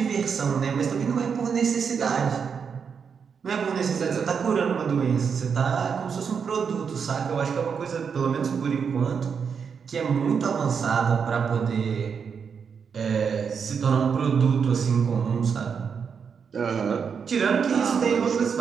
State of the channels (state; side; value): quieter; left; 6.4 dB